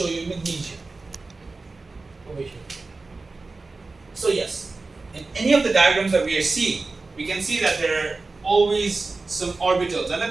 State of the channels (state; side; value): quieter; left; 3.7 dB